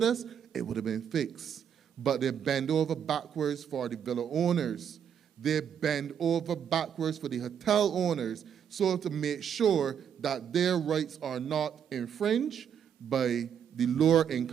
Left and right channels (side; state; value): left; quieter; 8.3 dB